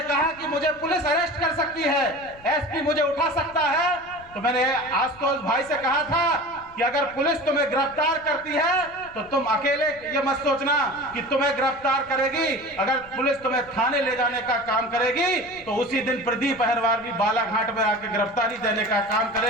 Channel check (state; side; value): noise; left; rumble, 24 dB below the sound